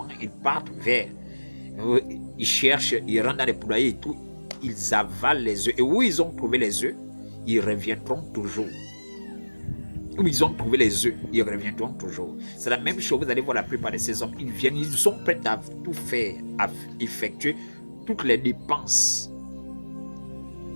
ils partent vers, ils cherchent, ils rentrent dans les poulaillers et tout, ils avalent les œufs. Et où ils ont trouvé les œufs, ils reviendront toujours. Où ils ont trouvé les œufs, ils reviendront toujours. C'est la même chose, vous allez voir la plupart de ces hommes, ils viennent, ils sont prêts à tout faire, à effectuer toutes les dépenses.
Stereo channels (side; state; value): both; inverted; correlation -1.00